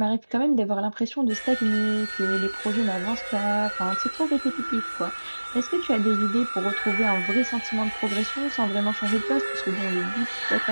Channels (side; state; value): both; inverted; correlation -1.00